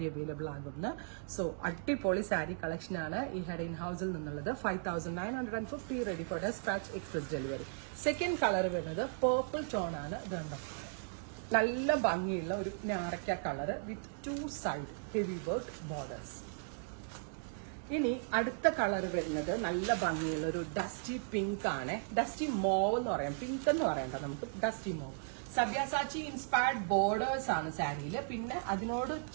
അവൈലബിൾ ആകുന്ന? സോ അടിപൊളി സാരി കളക്ഷൻ ആണ് ഈ ഹെഡ് ഇൻ ഹൗസിൽ നിന്നുള്ളത്. 5950, ready for despatch, express delivery. Second colour വരുന്നത് പേർപ്പിൾ ടോൺ ആണ്. ഇതുണ്ടോ, നല്ല ഭംഗിയുള്ള ഒരു ഞാറക്ക colour with 2 side heavy work borders. ഇനി അടുത്ത കളർ വരുന്നത് നല്ല ഭംഗിയുള്ള ഒരു ഡസ്റ്റി പിങ്ക് ആണ്. ഡസ്റ്റി മോവ് എന്ന് പറയാം, പിങ്ക് എന്ന് പറയണ്ട, നമുക്ക് dusty mauve. Sabyasachi inspired borders ആണ് സാരിയിൽ. പിന്നെ അതിനോട്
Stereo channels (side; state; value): left; silent; digital silence